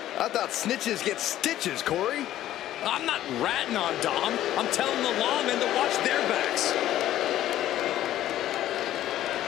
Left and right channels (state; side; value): quieter; right; 13.0 dB